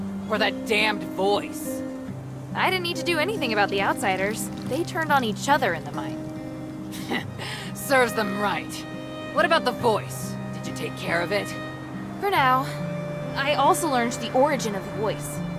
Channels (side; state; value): both; identical; correlation 1.00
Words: Or that damned voice? I didn't need to do anything about the outsiders. They turned on each other in the mine. Serves them right. What about the voice? Did you take care of it? For now. I also learned the origin of the voice.